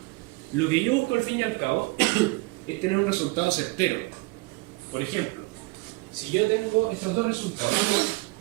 Lo que yo busco al fin y al cabo es tener un resultado certero. Por ejemplo, si yo tengo estos dos resultados,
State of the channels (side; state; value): left; quieter; 23.8 dB